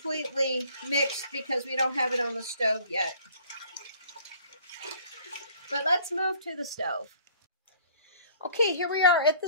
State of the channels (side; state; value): both; inverted; correlation -0.54